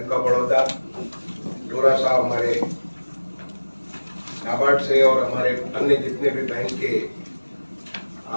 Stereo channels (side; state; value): both; inverted; correlation -1.00